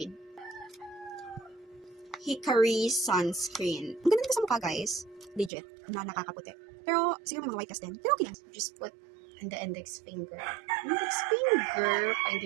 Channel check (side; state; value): left; drops out; at 5.5 s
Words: Hickory sunscreen. Ang ganda nito sa mukha, guys. Legit. Na nakakaputi. Pero, siguro may mga white cast din. Pero okay lang. Just put on the index finger. Index finger.